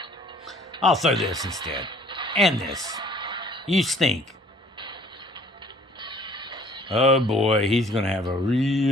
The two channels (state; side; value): normal; both; correlation 0.55